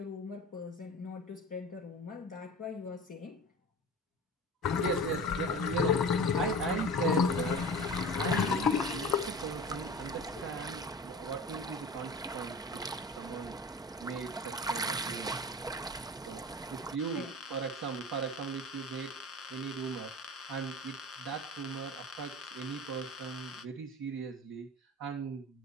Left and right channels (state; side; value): normal; both; correlation 0.36